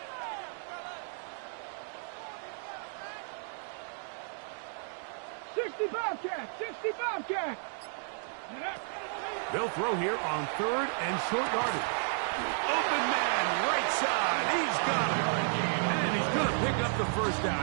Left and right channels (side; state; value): left; silent; digital silence